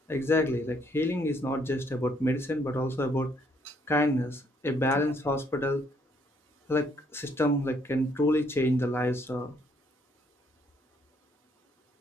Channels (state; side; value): normal; both; correlation 0.68